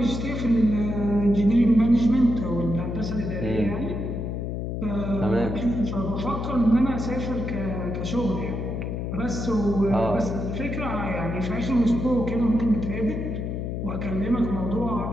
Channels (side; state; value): left; noise; hum, 3 dB below the sound